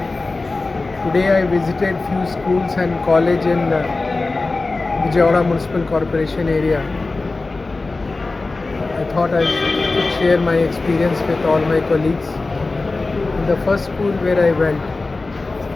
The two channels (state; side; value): quieter; right; 3.5 dB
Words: I visited few schools and college in Vijaywada Municipal Corporation area. I thought I could share my experience with all my colleagues. In the first school where I went,